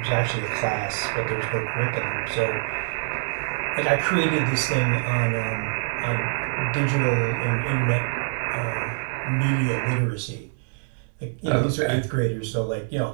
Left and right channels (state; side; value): silent; left; 62 dB below the other